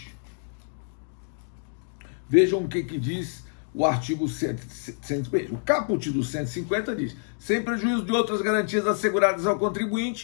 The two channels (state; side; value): silent; right; digital silence